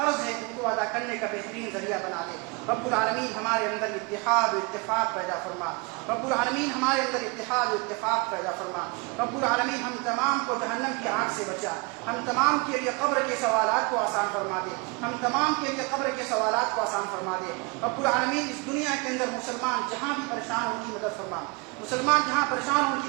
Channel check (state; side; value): quieter; left; 28.9 dB